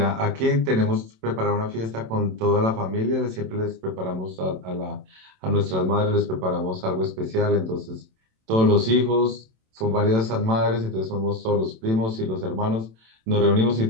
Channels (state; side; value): late; left; 27 ms